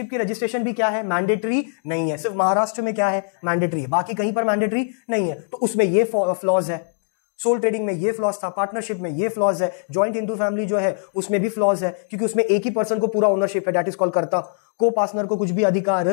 की रजिस्ट्रेशन भी क्या है, मैंडेटरी नहीं है। सिर्फ महाराष्ट्र में क्या है, मैंडेटरी है, बाकी कहीं पर मैंडेटरी नहीं है। तो उसमें ये फ्लॉज है। सोल ट्रेडिंग में ये फ्लॉज था, पार्टनरशिप में ये फ्लॉज है, जॉइंट हिंदू फैमिली जो है उसमें भी फ्लॉज है, क्योंकि उसमें एक ही पर्सन को पूरा ओनरशिप है, दैट इज कॉल्ड कर्ता। को पार्टनर को कुछ भी अधिकार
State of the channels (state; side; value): silent; right; digital silence